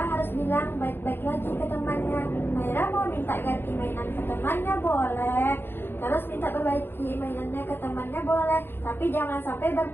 harus bilang baik-baik lagi ke temannya. Maira mau minta ganti mainan ke temannya boleh, terus minta perbaiki mainannya ke temannya boleh, tapi jangan sampai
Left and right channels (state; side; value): late; right; 0.10 ms